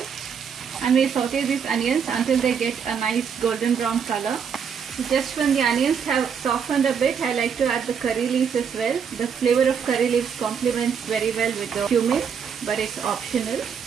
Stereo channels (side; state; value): left; quieter; 7.0 dB